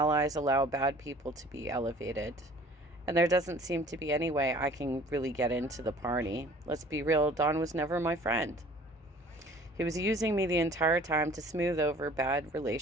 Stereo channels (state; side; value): normal; both; correlation 0.50